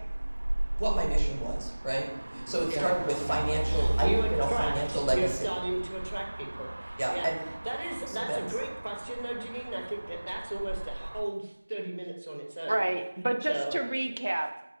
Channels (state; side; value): inverted; both; correlation -1.00